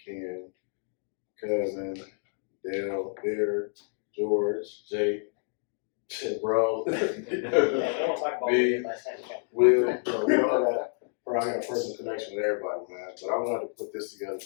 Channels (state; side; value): silent; right; digital silence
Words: Ken, cousin, Dale, Beard, George, Jake, bro, me, Will. We all got probably got a personal connection with everybody, man. But I wanted to put this together